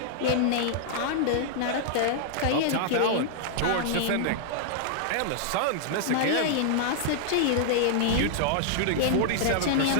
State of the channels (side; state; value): both; different; correlation -0.01